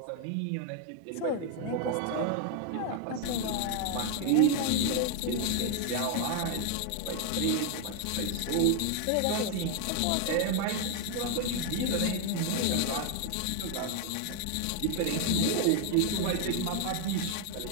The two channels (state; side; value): different; both; correlation 0.00